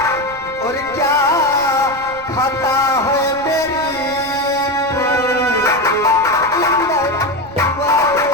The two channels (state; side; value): noise; right; rumble, 19 dB below the sound